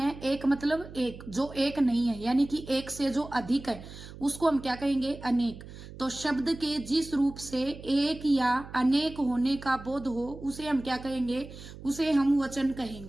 एक मतलब एक, जो एक नहीं है यानी कि एक से जो अधिक है उसको हम क्या कहेंगे? अनेक। तो शब्द के जिस रूप से एक या अनेक होने का बोध हो उसे हम क्या कहेंगे? उसे हम वचन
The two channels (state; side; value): noise; right; hum, 15 dB below the sound